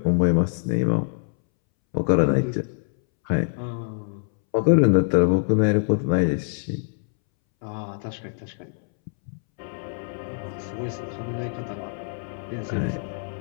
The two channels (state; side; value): silent; right; 62 dB below the other